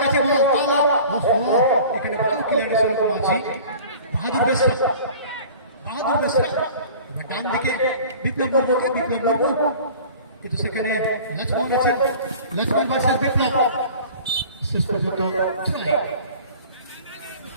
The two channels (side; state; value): both; inverted; correlation -0.44